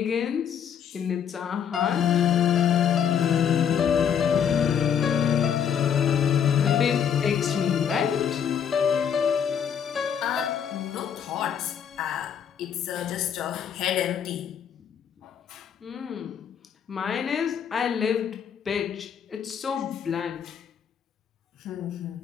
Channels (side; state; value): right; quieter; 8.1 dB